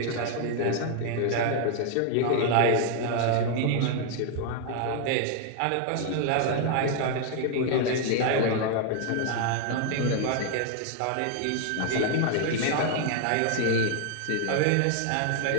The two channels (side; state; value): both; different; correlation 0.00